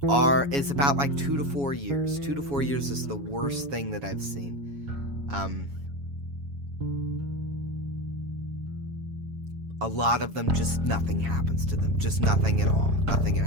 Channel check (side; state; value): left; late; 7.2 ms